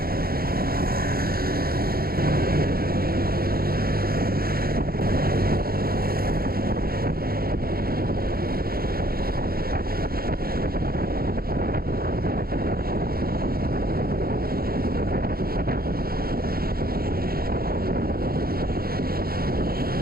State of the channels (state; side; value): late; left; 0.44 ms